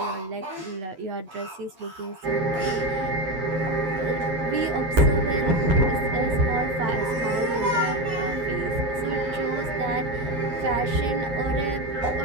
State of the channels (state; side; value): late; left; 9.0 ms